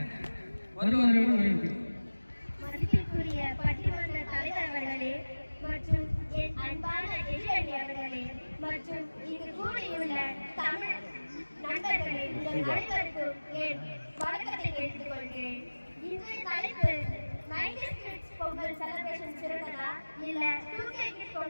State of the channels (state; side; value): inverted; both; correlation -1.00